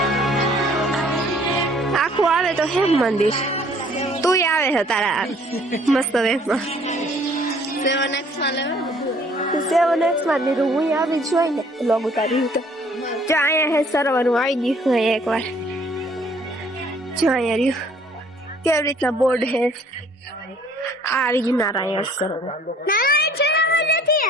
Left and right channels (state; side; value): normal; both; correlation 0.58